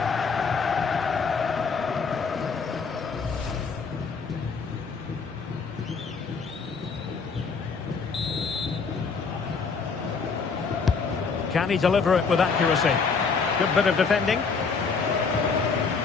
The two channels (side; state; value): right; quieter; 5.1 dB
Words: Can he deliver it with accuracy? Good bit of defending.